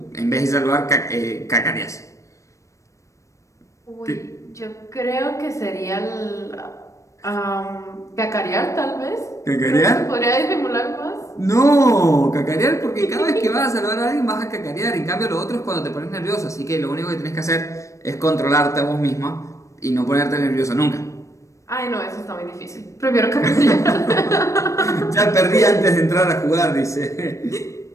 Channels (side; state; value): right; late; 0.15 ms